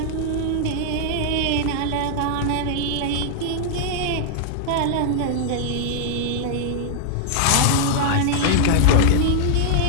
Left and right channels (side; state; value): both; different; correlation -0.01